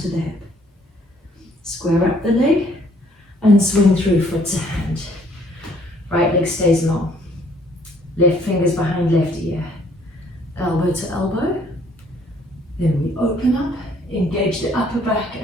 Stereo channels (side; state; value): both; normal; correlation 0.62